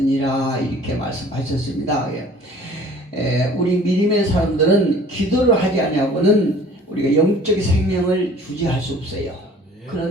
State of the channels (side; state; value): both; normal; correlation 0.50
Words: 이렇게 말씀하셨습니다. 우리 믿음의 사람들은 기도를 하지 않냐고는 우리가 영적 생명을 유지할 수 없어요.